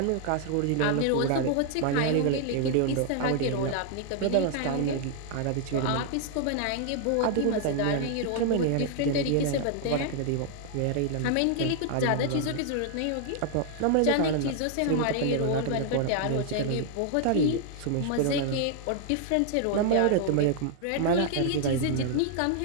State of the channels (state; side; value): different; both; correlation 0.00